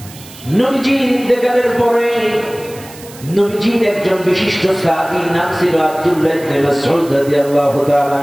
নবীজির ইন্তেকালের পরে নবীজির একজন বিশিষ্ট সাহাবী, নাম ছিল আব্দুল্লাহ ইবনে মাসউদ রাদিয়াল্লাহু তাআলা।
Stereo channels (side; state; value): right; noise; hiss, 19 dB below the sound